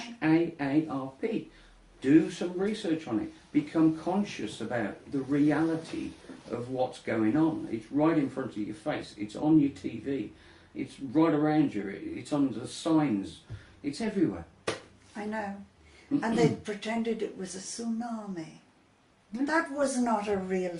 HAARP. Do some research on it. Become conscious about the reality of what's going on. It's right in front of your face. It's on your TV. It's right around you. It's on the signs. It's everywhere. I know. And they pretended it was a tsunami. That was not a real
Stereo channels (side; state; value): both; identical; correlation 1.00